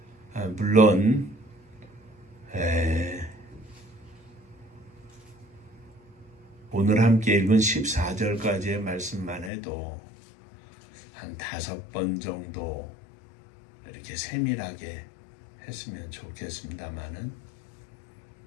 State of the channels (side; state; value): right; drops out; at 9.5 s